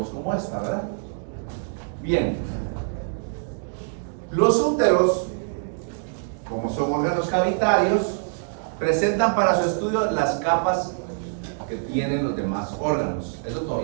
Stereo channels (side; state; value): left; silent; digital silence